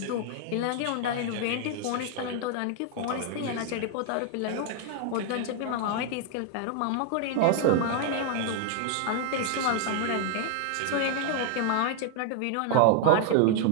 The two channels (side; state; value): both; different; correlation 0.00